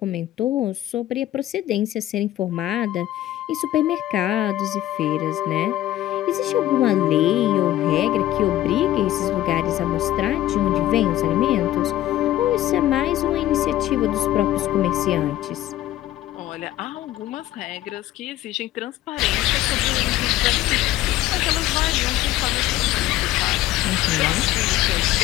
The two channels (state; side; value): quieter; right; 14.2 dB